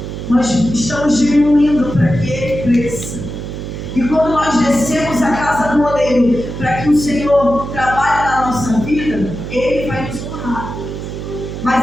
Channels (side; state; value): right; noise; hum, 7 dB below the sound